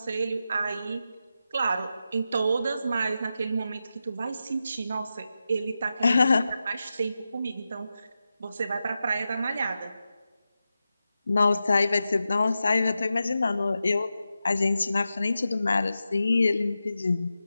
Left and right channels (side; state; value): both; inverted; correlation -0.91